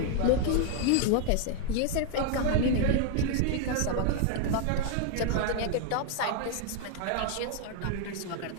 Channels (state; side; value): different; both; correlation 0.00